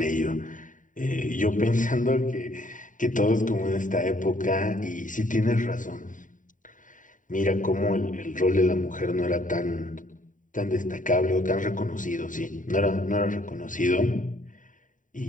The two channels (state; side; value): late; right; 0.38 ms